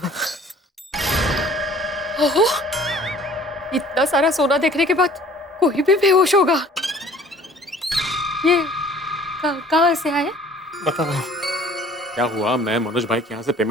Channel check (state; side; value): normal; both; correlation 0.51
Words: ओहो, इतना सारा सोना देखने के बाद कोई भी बेहोश होगा। ये कहाँ से आए? बताओ क्या हुआ। मैं मनोज भाई के यहाँ से